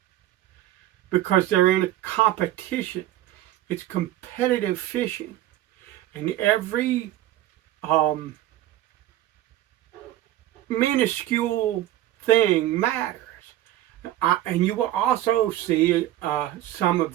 because they're in a competition. It's competitive fishing, and every minuscule thing matters. And you will also see some of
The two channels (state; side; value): quieter; left; 13.9 dB